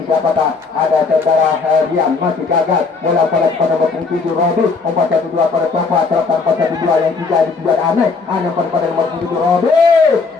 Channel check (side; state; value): right; quieter; 4.5 dB